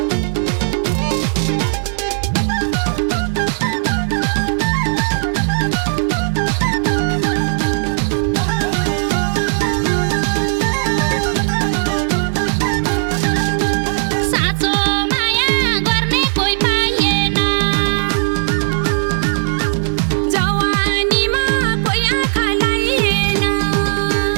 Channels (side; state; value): left; silent; digital silence